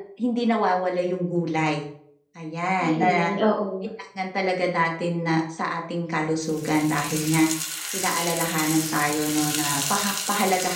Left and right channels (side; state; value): both; identical; correlation 1.00